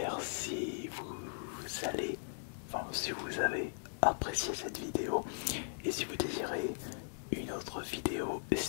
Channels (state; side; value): silent; right; digital silence